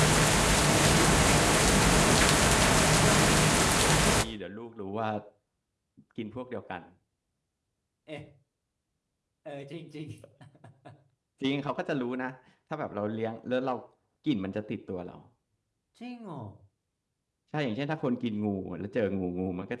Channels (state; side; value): identical; both; correlation 1.00